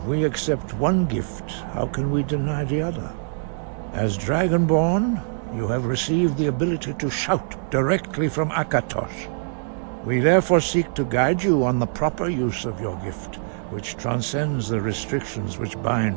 we accept one gift, how can we deny the other? As Dragonborn, you have received the ability to shout directly from Akatosh. We therefore seek to guide you on the proper use of your gift, which transcends the restrictions which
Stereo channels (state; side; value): silent; left; digital silence